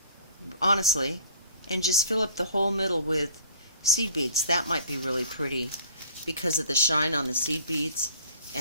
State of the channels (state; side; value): inverted; both; correlation -0.49